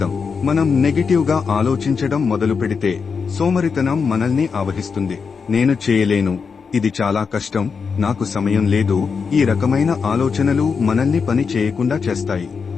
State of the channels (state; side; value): quieter; right; 5.6 dB